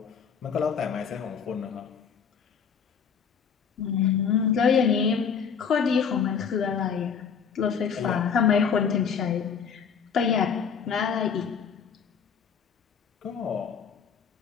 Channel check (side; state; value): right; quieter; 6.8 dB